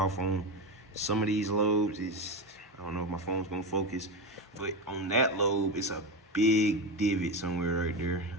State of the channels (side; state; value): both; normal; correlation 0.17